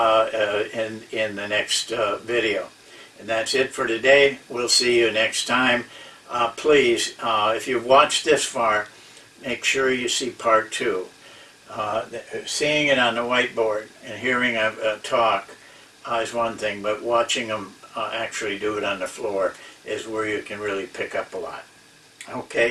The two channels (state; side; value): identical; both; correlation 1.00